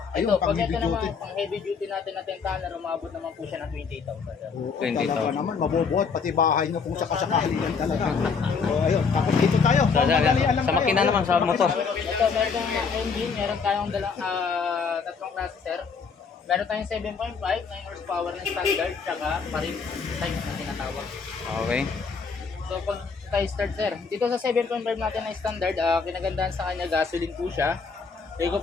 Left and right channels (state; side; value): quieter; right; 5.4 dB